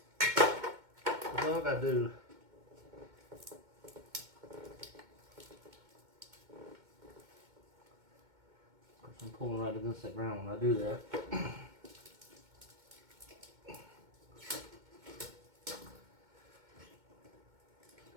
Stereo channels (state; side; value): late; left; 2.2 ms